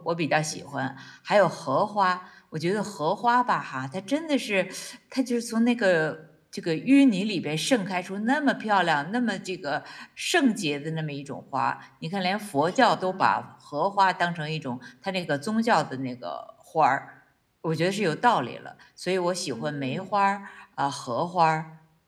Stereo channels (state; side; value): identical; both; correlation 1.00